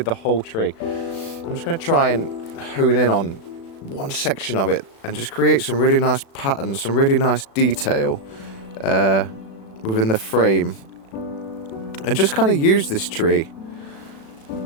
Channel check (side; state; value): right; late; 36 ms